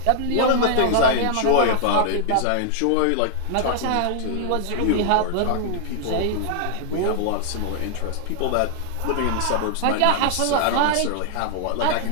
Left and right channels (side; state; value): both; different; correlation 0.00